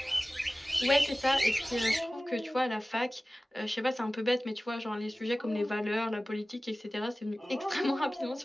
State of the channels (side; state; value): both; normal; correlation 0.97